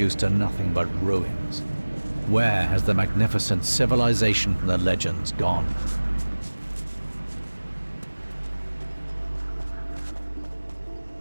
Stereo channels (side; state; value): both; inverted; correlation -1.00